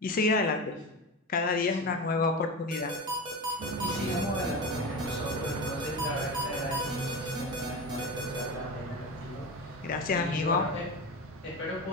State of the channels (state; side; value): normal; both; correlation 0.24